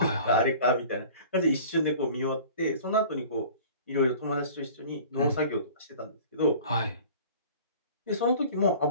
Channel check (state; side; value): inverted; both; correlation -0.44